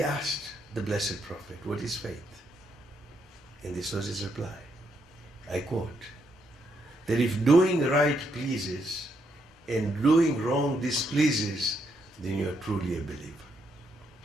asked the Blessed Prophet, what is faith? And this was his reply. I quote, that if doing right pleases and doing wrong displeases, then you are truly a believer.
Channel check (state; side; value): normal; both; correlation 0.77